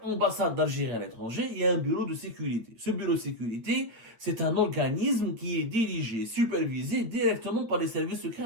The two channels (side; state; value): left; late; 8.9 ms